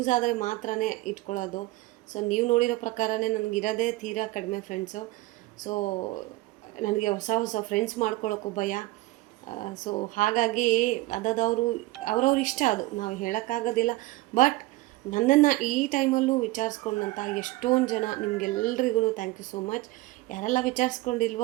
ಆದರೆ ಮಾತ್ರನೇ ಇಟ್ಕೊಳ್ಳೋದು. ಸೊ ನೀವು ನೋಡಿರೋ ಪ್ರಕಾರನೇ ನನಗಿರೋದೇ ತೀರಾ ಕಡಿಮೆ ಫ್ರೆಂಡ್ಸು. ಸೊ ನನಗೆ ಹೊಸ ಹೊಸ ಫ್ರೆಂಡ್ಸ್ ಮಾಡ್ಕೊಳ್ಳೋಕ್ಕೂ ಭಯ. ಸೊ ಹಾಗಾಗಿ ಅವ್ರವ್ರ ಇಷ್ಟ, ಅದು ನಾವು ಹೇಳೋಕ್ಕಾಗೋದಿಲ್ಲ. ಬಟ್ ನನ್ನನ್ನು ಈ ಟೈಮಲ್ಲೂ ವಿಚಾರಿಸ್ಕೊಂಡಂಥ ಎಷ್ಟೊಂದು ಜನ, ನಿಮಗೆಲ್ರಿಗೂ ಥ್ಯಾಂಕ್ ಯು ಸೋ ಮಚ್. ಯಾರೆಲ್ಲ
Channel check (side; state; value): left; quieter; 19.3 dB